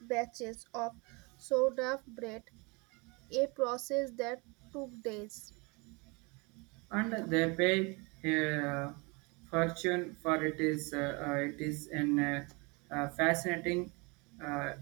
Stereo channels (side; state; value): left; quieter; 28.9 dB